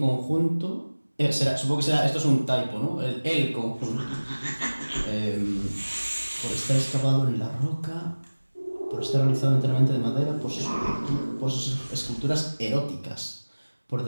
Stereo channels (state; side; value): inverted; both; correlation -1.00